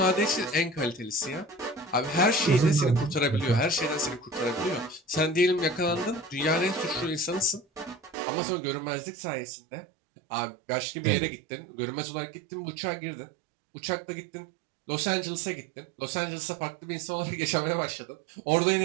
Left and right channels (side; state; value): left; drops out; at 8.2 s